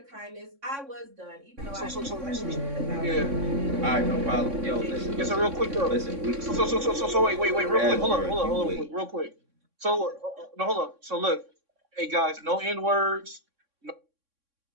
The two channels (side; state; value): left; late; 3.6 ms